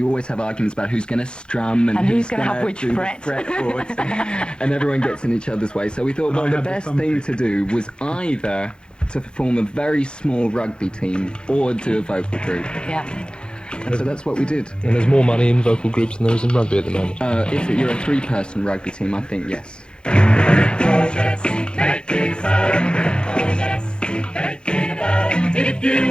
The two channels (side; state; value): right; late; 0.050 ms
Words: always have arguments about who's going to strum and who's going to have which do fret. the fretboards. And everyone gets in each other's way. So we thought, well, the best thing to do was either to form a very small rugby team or do a vocal group. Yeah. And so that's what we did. And there's more money in vocal groups than there is in rugby at the moment. If you're a three-person rugby team, I think yes. If